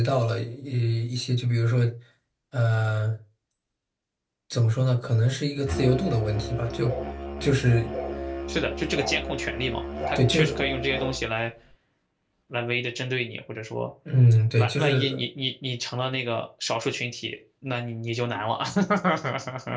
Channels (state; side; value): identical; both; correlation 1.00